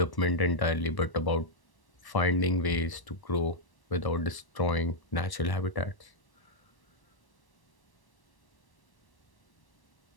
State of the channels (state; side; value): late; right; 1.1 ms